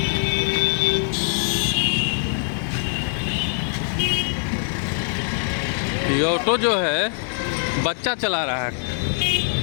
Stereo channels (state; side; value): silent; right; digital silence